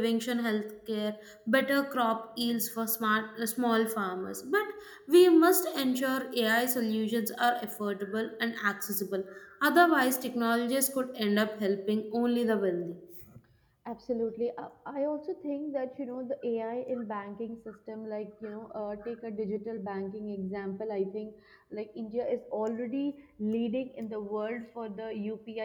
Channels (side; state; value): both; identical; correlation 1.00